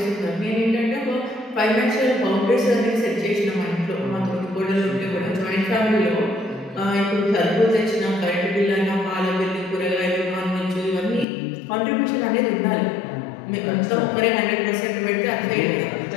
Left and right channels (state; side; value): drops out; right; at 11.2 s